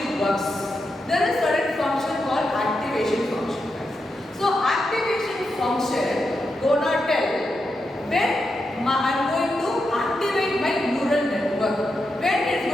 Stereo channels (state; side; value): normal; both; correlation 0.86